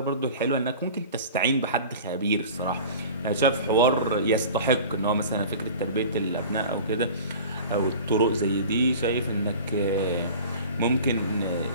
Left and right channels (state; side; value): inverted; both; correlation -0.39